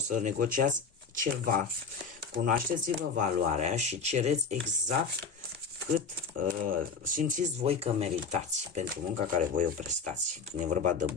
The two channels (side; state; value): right; quieter; 5.2 dB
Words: negociați ceva, cunoașteți-vă valoarea și cereți exact cât simțiți voi că meritați pentru munca care voi o prestați, când e vorba de